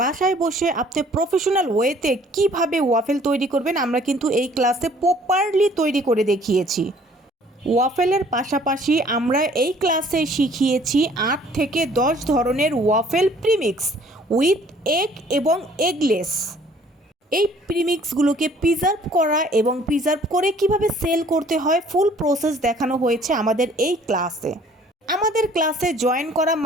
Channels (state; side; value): normal; both; correlation 0.56